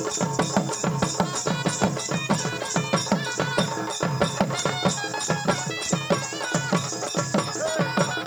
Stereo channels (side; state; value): right; noise; hiss, 27 dB below the sound